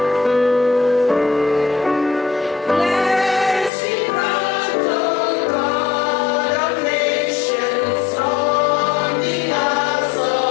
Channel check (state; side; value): drops out; right; at 3.7 s